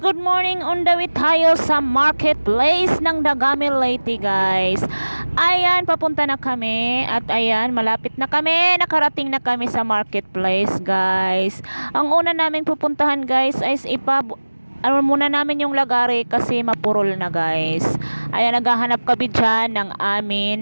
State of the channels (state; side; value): inverted; both; correlation -1.00